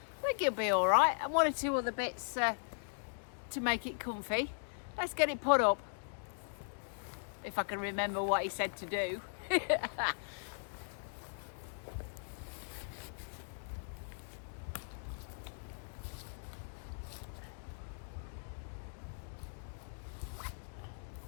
I think it'll be all right, and one or two other bits to make it comfy. Let's get it put up, if I can remember what he said to do.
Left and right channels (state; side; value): silent; right; digital silence